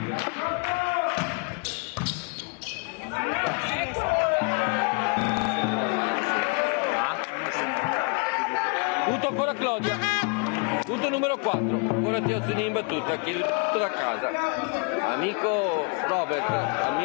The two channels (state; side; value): quieter; right; 33.7 dB